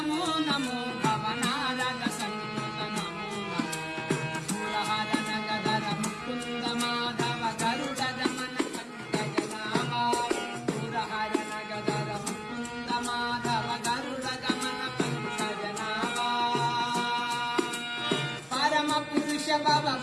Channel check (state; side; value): identical; both; correlation 1.00